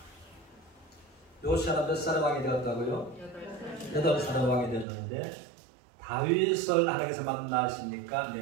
요시아가 몇 살의 왕이 되었다고요? 8살의 왕이 되었는데 다윗을 하나님께서 만나시니까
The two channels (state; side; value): drops out; left; at 4.9 s